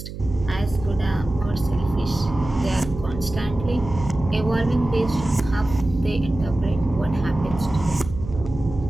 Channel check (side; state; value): right; noise; hum, 10 dB below the sound